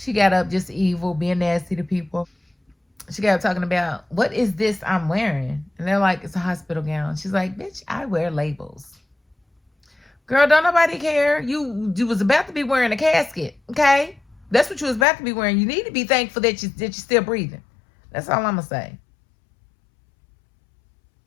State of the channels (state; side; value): drops out; right; at 15.1 s